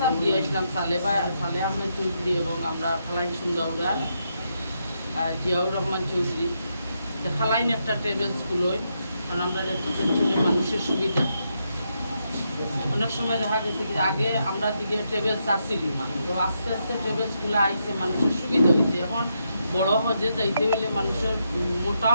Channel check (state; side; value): inverted; both; correlation -0.81